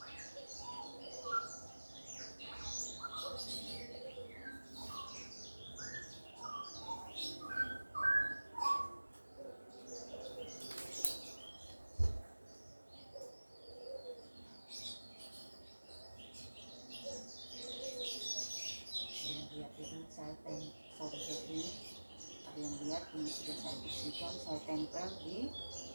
Ini sudah saya bersihkan, saya tempel di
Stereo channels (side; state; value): both; inverted; correlation -1.00